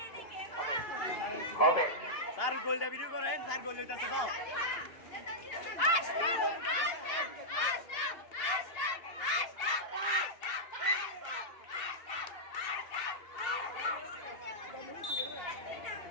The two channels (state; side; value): late; right; 2.8 ms